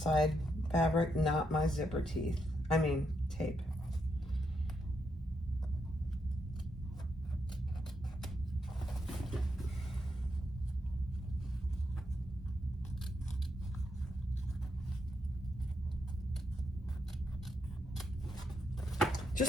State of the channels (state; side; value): normal; both; correlation 0.81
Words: fabric, not my zipper teeth. I mean, tape.